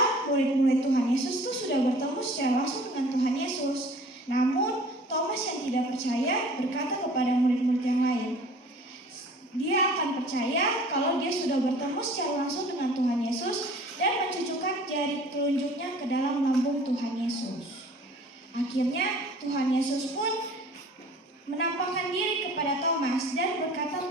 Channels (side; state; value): both; normal; correlation 0.48